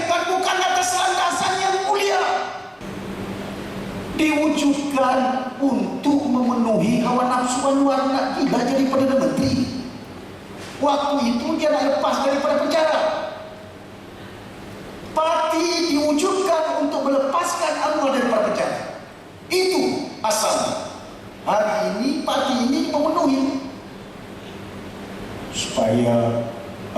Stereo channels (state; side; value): identical; both; correlation 1.00